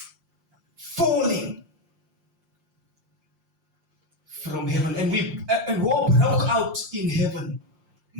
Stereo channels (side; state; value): left; late; 5.7 ms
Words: falling from heaven, and war broke out in heaven.